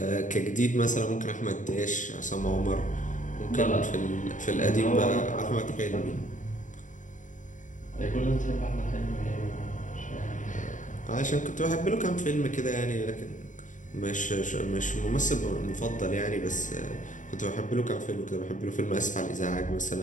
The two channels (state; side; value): late; right; 0.37 ms